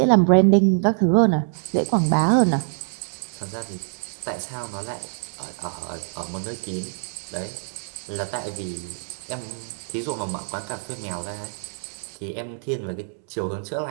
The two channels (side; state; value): left; silent; digital silence